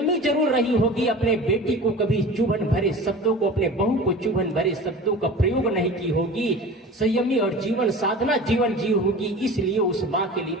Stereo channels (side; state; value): both; normal; correlation 0.37